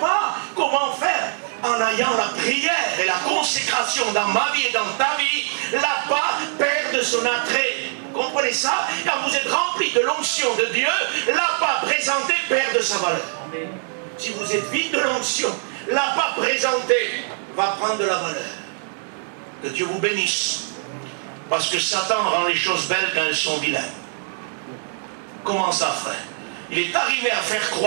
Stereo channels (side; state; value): left; silent; digital silence